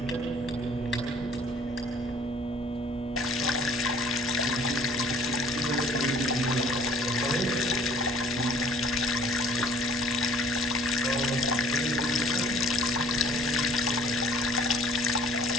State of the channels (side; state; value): both; normal; correlation 0.53